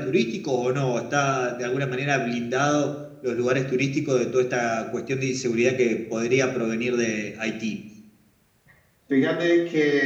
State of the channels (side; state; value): both; identical; correlation 1.00